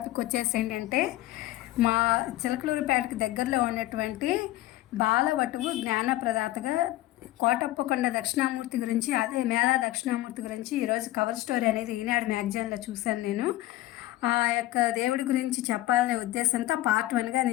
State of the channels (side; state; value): right; quieter; 16.5 dB